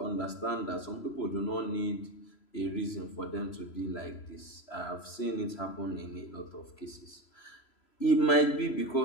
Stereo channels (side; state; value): right; late; 3.0 ms